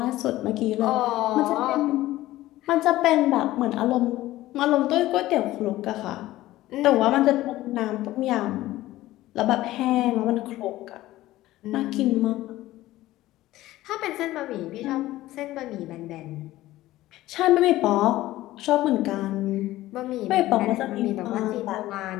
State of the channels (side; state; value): right; quieter; 16.1 dB